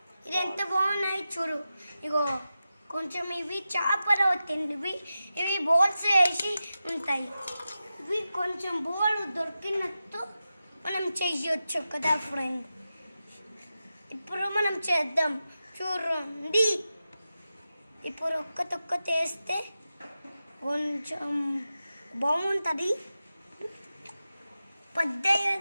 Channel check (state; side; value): inverted; both; correlation -0.92